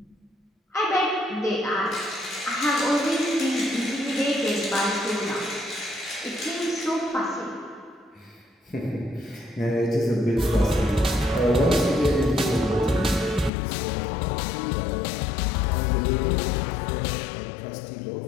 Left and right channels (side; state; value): right; drops out; at 13.5 s